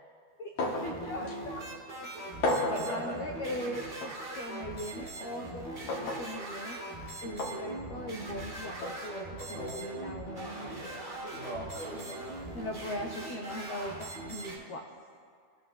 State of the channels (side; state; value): right; late; 12 ms